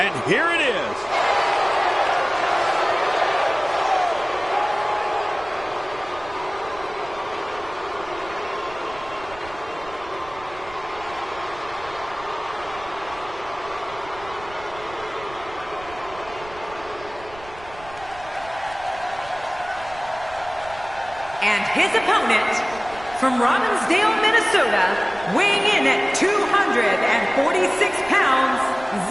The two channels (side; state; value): right; noise; rumble, 19 dB below the sound